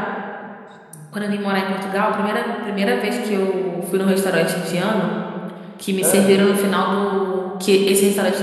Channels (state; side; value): identical; both; correlation 1.00